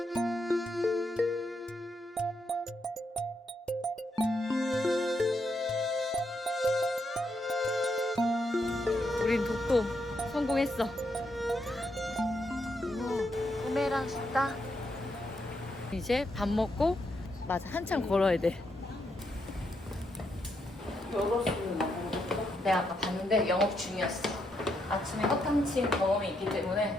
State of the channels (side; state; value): both; normal; correlation 0.79